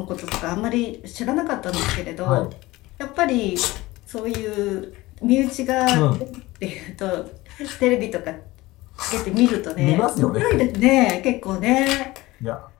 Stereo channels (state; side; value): quieter; right; 19.5 dB